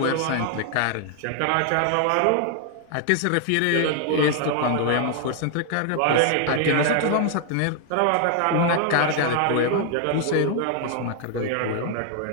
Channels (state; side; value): different; both; correlation 0.00